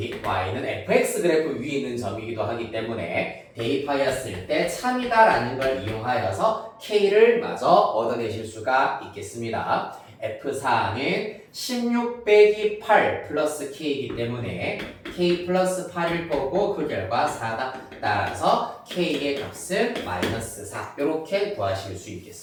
Y는 fx 그래프 위에 있는 점이기도 하기 때문에 대입하였을 때 참이다라는 걸 이용하여서 K를 마저 얻어내실 수가 있겠습니다. F4는 16 빼기 8 플러스 K이기 때문에 K 플러스 8일 거고 그 결과 4다. 따라서 K의 값은 마이너스 4 이렇게 구하실 수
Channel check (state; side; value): identical; both; correlation 1.00